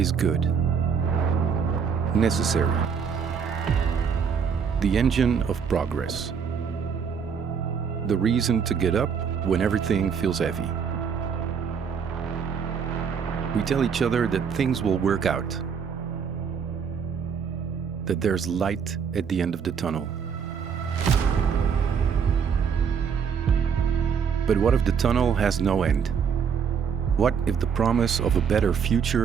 good, necessary, the engine of progress, the reason to get up when everything feels heavy. We tell each other that things will work out, that there's light at the end of the tunnel. But what if the tunnel has no end? What if the promise of a better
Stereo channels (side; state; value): left; quieter; 6.7 dB